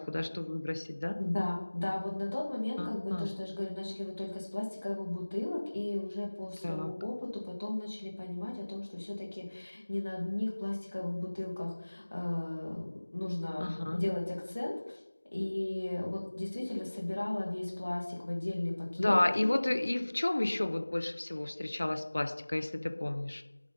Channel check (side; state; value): both; inverted; correlation -1.00